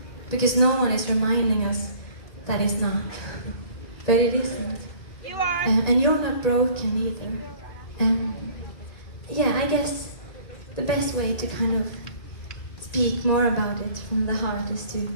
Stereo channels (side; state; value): right; late; 1.9 ms